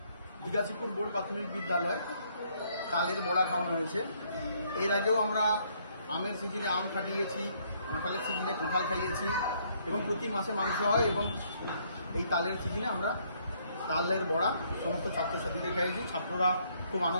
দিঘাচিপুর বোর্ড প্রাথমিক বিদ্যালয় তালের বড়া খাওয়ানো হয়েছে। এর আগেও আমরা আমের সিজনে আম খাটিয়েছি, কাঁঠালের সিজনে কাঁঠাল খাইয়েছি এবং প্রতি মাসে মাংস হয় এবং এই তালের সিজনে আমরা তালের বড়া সমস্ত ছাত্রছাত্রীদের খাইয়েছি। ছাত্ররা খুব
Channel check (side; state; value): both; inverted; correlation -0.68